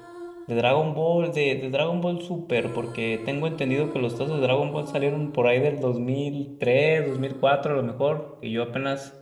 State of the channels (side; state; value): both; identical; correlation 1.00